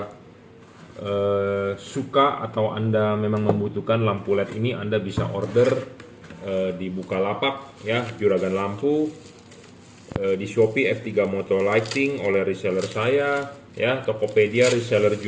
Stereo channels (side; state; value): both; identical; correlation 1.00